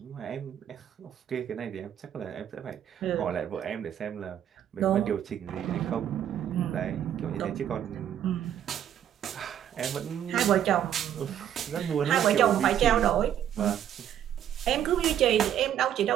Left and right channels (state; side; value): quieter; left; 10.2 dB